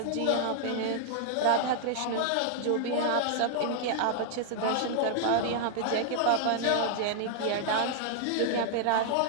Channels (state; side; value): different; both; correlation 0.00